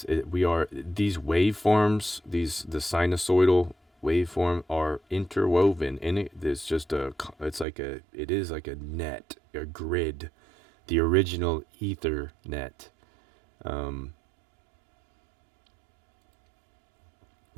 we are these waveforms. The sinusoidal waveform are interwoven, and it is like a net, a grid, the original ether net.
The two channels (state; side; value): drops out; left; at 7.7 s